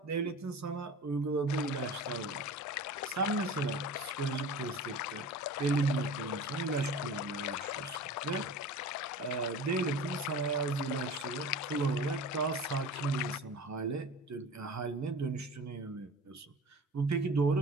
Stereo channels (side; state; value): both; normal; correlation 0.37